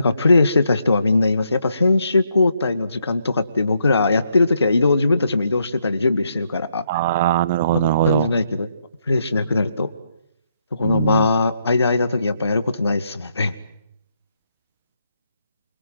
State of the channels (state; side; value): inverted; both; correlation -0.76